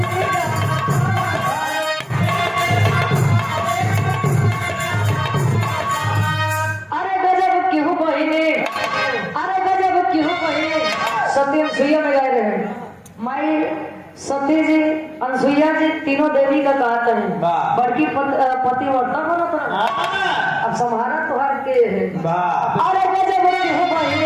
सती अनसुईया में गए रहे। माई सती जी अनसुईया जी तीनों देवी का कहता है। बड़की पतिव्रता बना था। अब संहारा तुहार के है। अरे गजब की हो भाई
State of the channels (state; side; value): identical; both; correlation 1.00